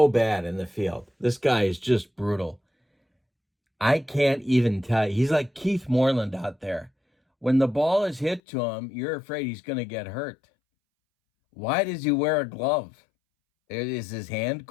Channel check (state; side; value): drops out; right; at 8.4 s